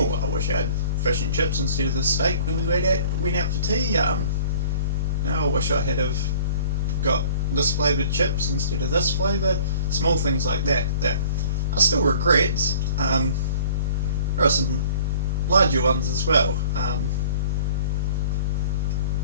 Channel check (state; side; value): inverted; both; correlation -0.47